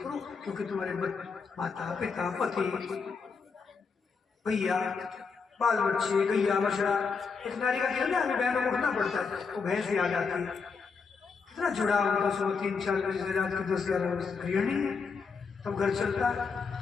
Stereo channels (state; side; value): quieter; right; 5.2 dB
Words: क्योंकि तुम्हारे माता पिता पति भैया बाल बच्चे गैया बछड़ा, एक नारी का कहना हमें बहनों को उठना पड़ता है, वो भैंस याद आती है, कितना जुड़ा हुआ। सुबह 3-4 बजे रात के 10-11 बजे गृहिणी है, तब घर चलता है।